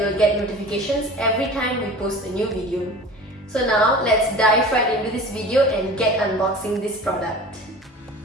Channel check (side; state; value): both; normal; correlation 0.39